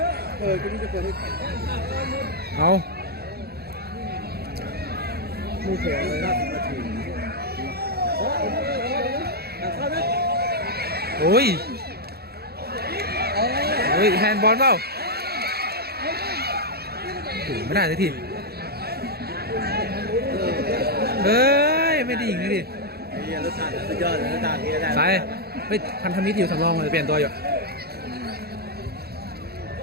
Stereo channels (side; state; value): left; late; 0.46 ms